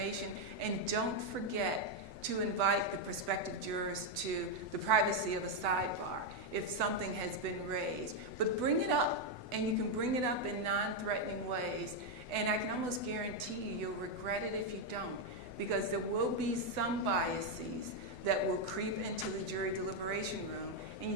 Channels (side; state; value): left; late; 8.0 ms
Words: And don't forget to invite the prospective jurors to the privacy of a sidebar if something has been raised. But bring it up, and you can bring it up in non-threatening ways. And I can almost guarantee you, you'll regret it if you don't, because there will be some biases that will creep into the jury deliberation room, and